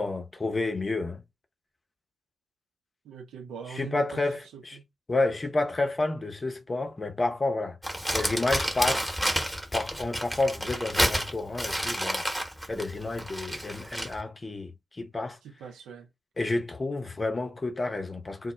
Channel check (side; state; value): both; normal; correlation 0.94